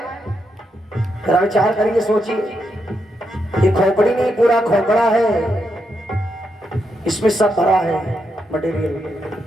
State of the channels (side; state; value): both; normal; correlation 0.82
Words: जरा विचार करिए, सोचिए। ये खोपड़ी नहीं, पूरा खोपड़ा है, इसमें सब भरा है मटेरियल।